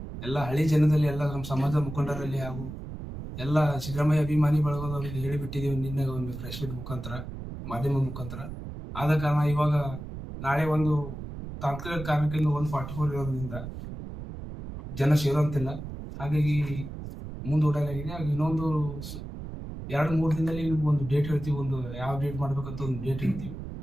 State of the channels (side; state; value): right; noise; rumble, 9 dB below the sound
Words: ಎಲ್ಲ ಹಳ್ಳಿ ಜನದಲ್ಲಿ ಎಲ್ಲ ನಮ್ಮ ಸಮಾಜದ ಮುಖಂಡರಲ್ಲಿ ಹಾಗೂ ಎಲ್ಲ ಸಿದ್ದರಾಮಯ್ಯ ಅಭಿಮಾನಿ ಬಳಗದವರಿಗೆ ಹೇಳಿಬಿಟ್ಟಿದ್ದೀವಿ. ನಿನ್ನೆ ಒಂದು ಪ್ರೆಸ್ ಮೀಟ್ ಮುಖಾಂತರ, ಮಾಧ್ಯಮ ಮುಖಾಂತರ. ಆದ ಕಾರಣ ಇವಾಗ ನಾಳೆ ತಾಂತ್ರಿಕ ಕಾರಣಕ್ಕಿಂತ 144 ಇರೋದ್ರಿಂದ ಜನ ಸೇರುವಂತಿಲ್ಲ. ಹಾಗಾಗಿ ಮುಂದೂಡಲಾಗಿದೆ. ಹಾಗೆ ಇನ್ನೊಂದು 2-3 ದಿನದಲ್ಲಿ ಒಂದು ಡೇಟ್ ಹೇಳ್ತೀವಿ. ಯಾವ ಡೇಟ್ ಮಾಡ್ಬೇಕಂತ ಒಂದು ಡೇಟ್ ಹೇಳ್ತೀವಿ.